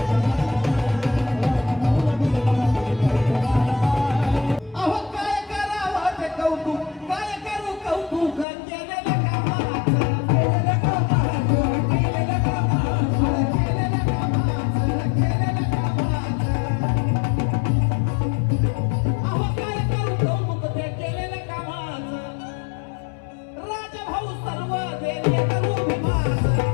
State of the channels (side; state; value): right; drops out; at 8.5 s